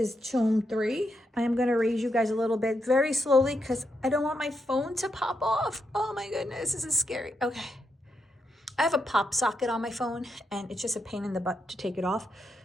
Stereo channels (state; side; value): normal; both; correlation 0.82